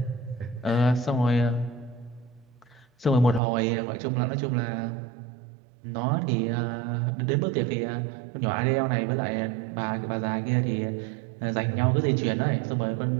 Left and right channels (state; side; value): drops out; left; at 3.4 s